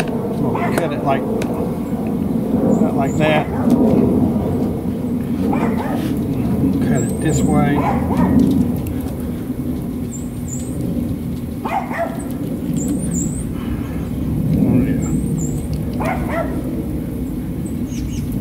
We'll cut it like not like that. Cut it this way.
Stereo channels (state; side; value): identical; both; correlation 1.00